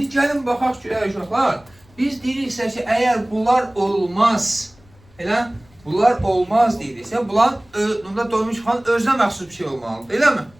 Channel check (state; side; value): noise; left; rumble, 29 dB below the sound